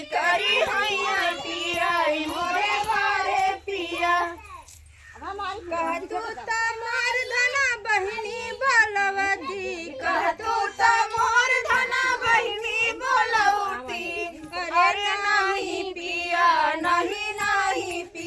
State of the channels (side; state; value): both; identical; correlation 1.00